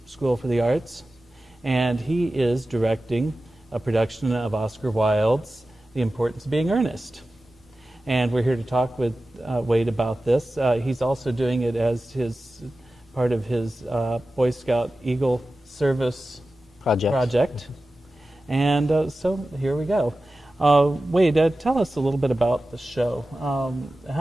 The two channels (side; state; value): both; normal; correlation 0.95